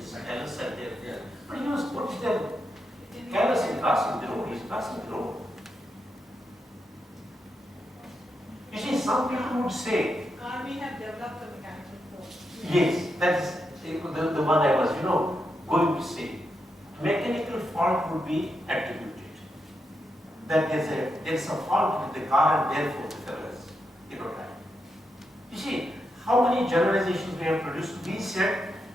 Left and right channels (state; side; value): normal; both; correlation 0.84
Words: careless and there. Yeah. But he was, what is that? Careless in crossing the road, he's crossing the road. You see, some people would say, Car may have developed a mechanical fault. yes, that's the one I was, going to say. Mechanical fault would be attributed. That there's a fault with the car and therefore the fellow has, died. You see, how many generalizations we have produced? We said